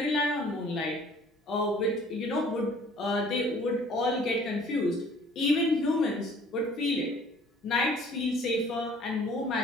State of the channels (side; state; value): both; normal; correlation 0.53